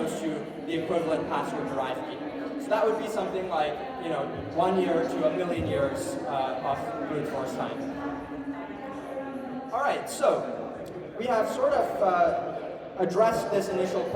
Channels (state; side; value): identical; both; correlation 1.00